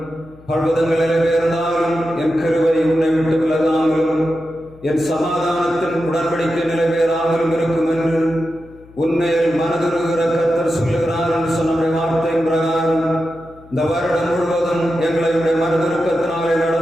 பர்வதங்கள் நிறைவேறினாலும் என் கிருபை உன்னை விட்டு விலகாமலும் என் சமாதானத்தின் உடன்படிக்கை நிறைவேறாமலும் இருக்கும் என்று உண்மையில் மனதுருகிற கர்த்தர் சொல்லுகிறார் என்று சொன்ன வார்த்தையின் பிரகாரம் இந்த வருடம் முழுவதும் எங்களை மனதுருக்கத்தினாலே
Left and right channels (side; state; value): left; noise; hum, 24 dB below the sound